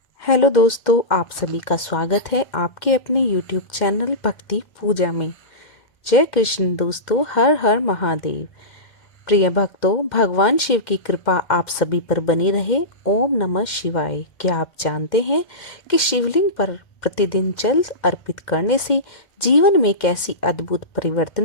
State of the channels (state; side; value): late; right; 2.1 ms